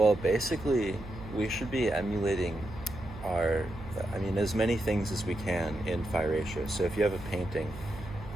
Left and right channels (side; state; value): right; noise; hum, 13 dB below the sound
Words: basically, we should be emulating as many things as we can in phi ratio. So if you have a painting,